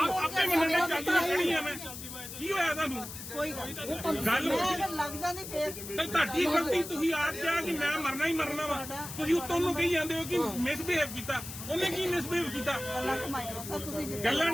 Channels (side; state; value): left; noise; hiss, 10 dB below the sound